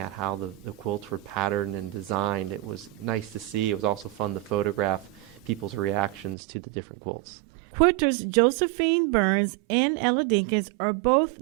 how the quilts were patterned and designed, it was nice to see. It was also fun to photograph people's reactions to the different quilts. Quilters Josephine Burns and Ella Dinkins are both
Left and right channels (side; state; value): left; drops out; at 6.4 s